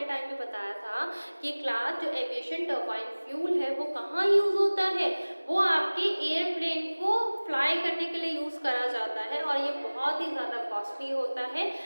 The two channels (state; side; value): inverted; both; correlation -1.00